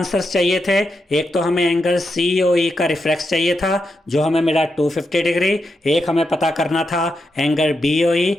चाहिए थे, एक तो हमें एंगल COE का रिफ्लेक्स चाहिए था जो हमें मिला 250 डिग्री, एक हमें पता करना था एंगल BOE,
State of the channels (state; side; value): normal; both; correlation 0.85